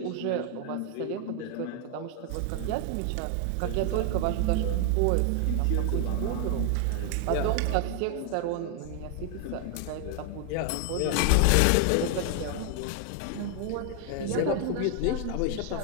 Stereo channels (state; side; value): different; both; correlation 0.00